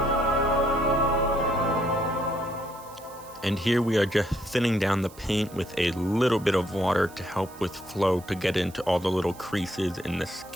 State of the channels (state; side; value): noise; right; hiss, 21 dB below the sound